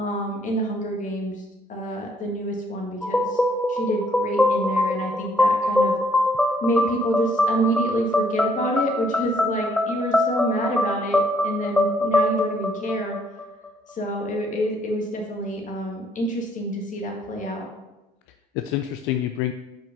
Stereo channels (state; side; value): normal; both; correlation 0.66